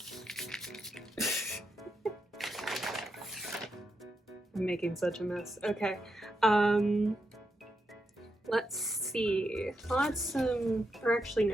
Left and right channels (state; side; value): normal; both; correlation 0.84